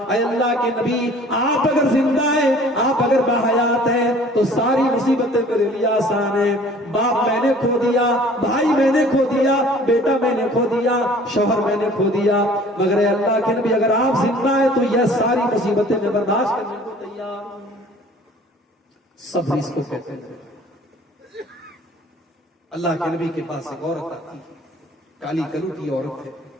اے اللہ کے نبی آپ اگر زندہ ہیں، آپ اگر باحیات ہیں تو ساری مصیبتیں میرے لیے آسان ہیں. باپ میں نے کھو دیا، بھائی میں نے کھو دیا، بیٹا میں نے کھو دیا، شوہر میں نے کھو دیا، مگر اے اللہ کے نبی اگر آپ زندہ ہیں تو یہ ساری مصیبتیں میں برداشت کرنے کو تیار ہوں. صبر اس کو کہتے ہیں. اللہ کے نبی کے پاس ایک عورت آتی ہے، کالی کلوٹی عورت ہے،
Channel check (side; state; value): both; normal; correlation 0.50